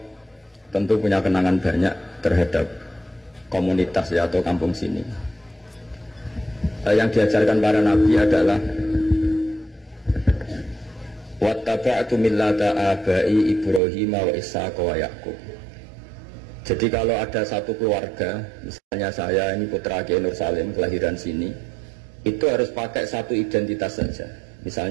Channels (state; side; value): drops out; left; at 13.8 s